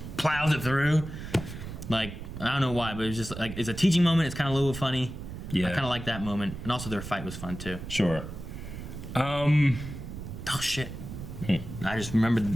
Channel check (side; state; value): right; noise; rumble, 9 dB below the sound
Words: plows it through. Like, I don't know why, but it was just like, it's a teaching moment. It's kind of a little funny. Yeah. I kind of like that moment. And also their fight was fun too. Sure. Oh shit. I just remember